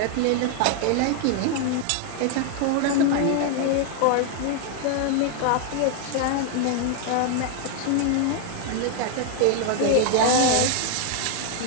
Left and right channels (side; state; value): both; different; correlation 0.00